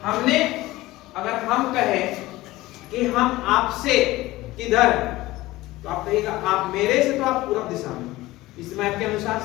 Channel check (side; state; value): right; quieter; 18.2 dB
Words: हमने अगर हम कहें कि हम आपसे किधर है, तो आप कहिएगा आप मेरे से, तो आप पूरब दिशा में इस मैप के अनुसार